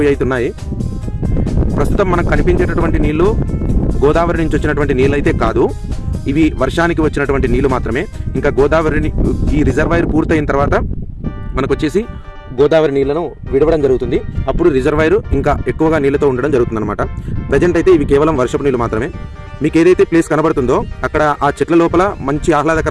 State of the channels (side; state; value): both; identical; correlation 1.00